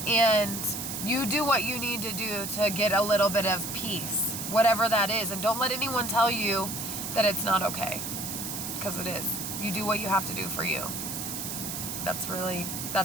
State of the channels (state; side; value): noise; right; hiss, 5 dB below the sound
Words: And you do what you need to do to get a little bit of peace, whatever that is. And don't let anyone tell you that it's not okay, because it is. You do what you have to do for you. That's